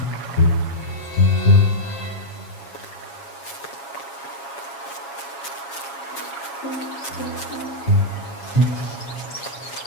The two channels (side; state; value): right; late; 7.2 ms